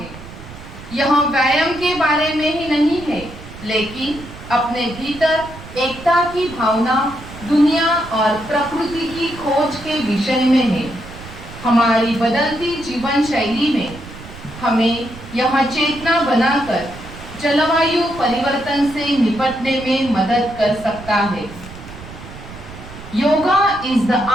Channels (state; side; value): noise; right; rumble, 15 dB below the sound